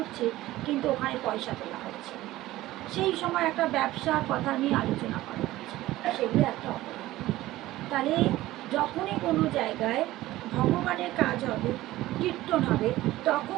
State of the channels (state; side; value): quieter; left; 16.5 dB